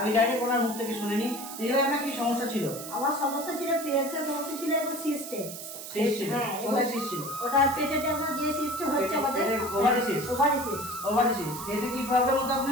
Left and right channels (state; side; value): noise; right; hiss, 10 dB below the sound